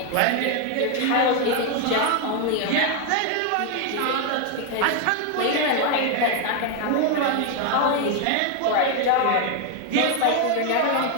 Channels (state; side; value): different; both; correlation 0.01